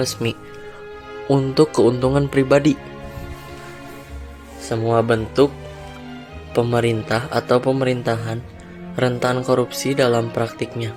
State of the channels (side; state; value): both; identical; correlation 1.00